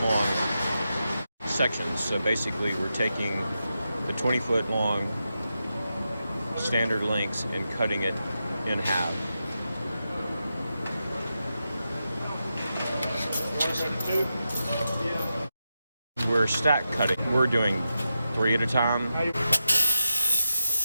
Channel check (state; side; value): inverted; both; correlation -0.89